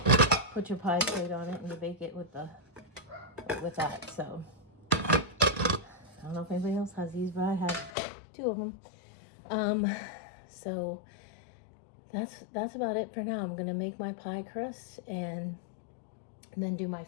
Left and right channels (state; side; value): drops out; right; at 7.9 s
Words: Put your pie plate on it and you bake it with that. So I don't know if anybody else has these, but I have 2 of them. So that's about it for now. I'm gonna make my pie crust and then do my